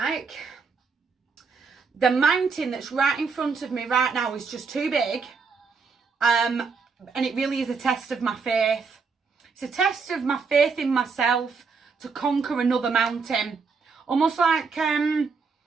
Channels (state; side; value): quieter; left; 5.0 dB